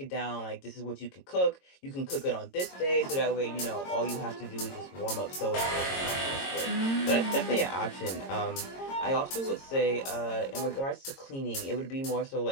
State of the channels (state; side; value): late; right; 22 ms